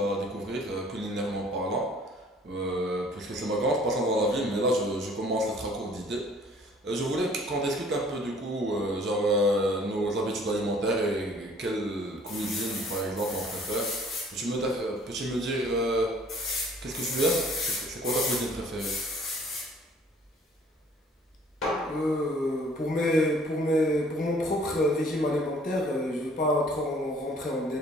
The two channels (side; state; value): both; normal; correlation 0.56